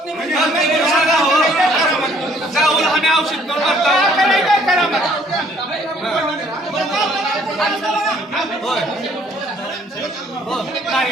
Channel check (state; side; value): normal; both; correlation 0.61